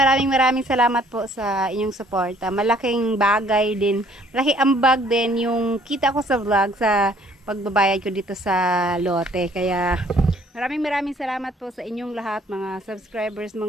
salamat po sa inyong suporta. Malaking bagay din, malaki ambag din yung kita ko sa vlog sa pagbabayad ko dito sa lote. Kaya maraming salamat po sa inyong lahat, mga subscribers,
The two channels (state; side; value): normal; both; correlation 0.60